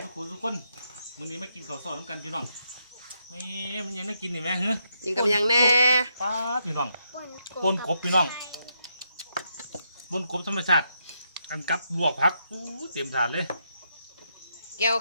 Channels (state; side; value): inverted; both; correlation -0.80